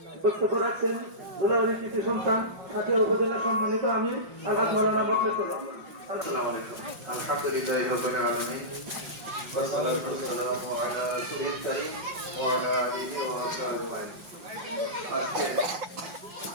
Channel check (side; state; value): left; late; 5.3 ms